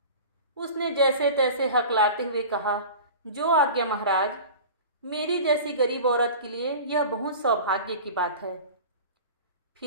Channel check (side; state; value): both; inverted; correlation -0.37